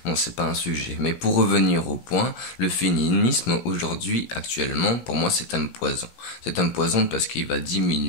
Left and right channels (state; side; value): late; right; 17 ms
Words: Bon, c'est pas un sujet. Mais pour revenir au point, le féminisme aujourd'hui, actuellement, pour moi, c'est un poison. C'est un poison parce qu'il va